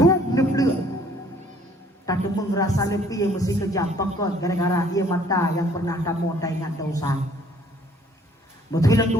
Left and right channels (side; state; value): both; normal; correlation 0.59